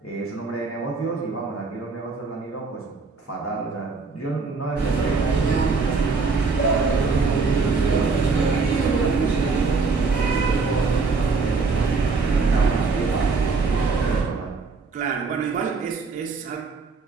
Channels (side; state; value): left; quieter; 4.4 dB